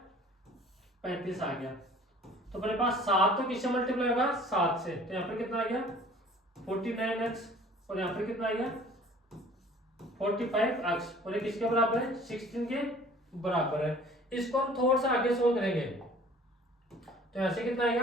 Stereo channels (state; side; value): normal; both; correlation 0.50